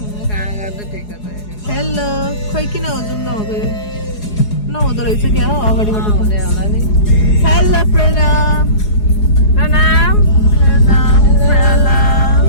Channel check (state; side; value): late; right; 4.8 ms